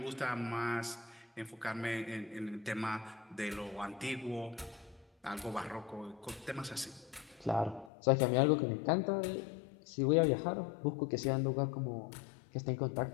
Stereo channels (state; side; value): drops out; right; at 7.9 s